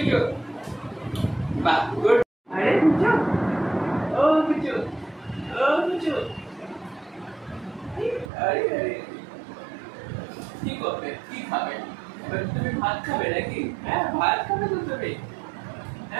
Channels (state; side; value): drops out; left; at 8.3 s